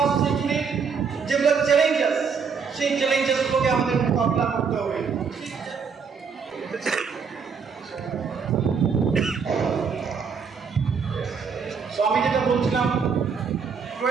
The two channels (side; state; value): left; quieter; 5.9 dB